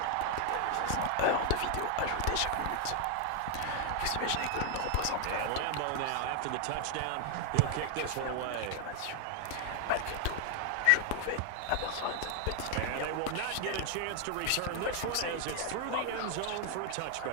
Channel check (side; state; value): both; different; correlation 0.00